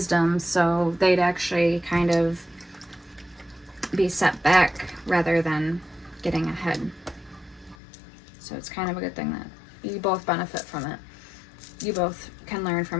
So they'd actually kind of be set back rather than getting ahead. So it's kind of a good thing that you both benefit from it. You both can learn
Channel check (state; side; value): drops out; right; at 7.8 s